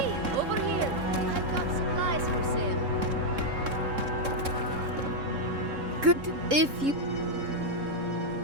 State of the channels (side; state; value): left; late; 3.7 ms